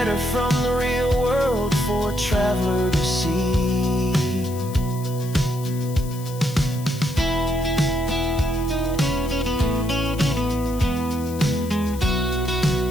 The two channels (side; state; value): left; noise; hiss, 17 dB below the sound